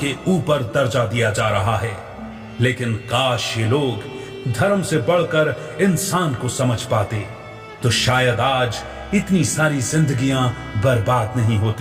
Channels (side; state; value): both; identical; correlation 1.00